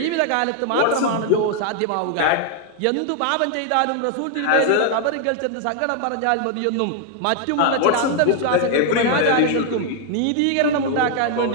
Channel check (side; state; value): both; different; correlation 0.00